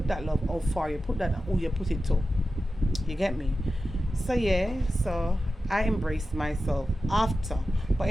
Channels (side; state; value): both; normal; correlation 0.93